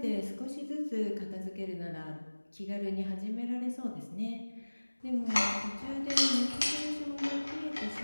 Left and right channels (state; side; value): inverted; both; correlation -1.00